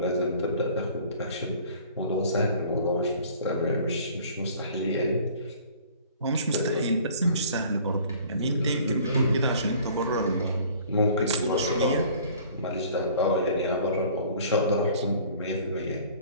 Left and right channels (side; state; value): both; inverted; correlation -0.50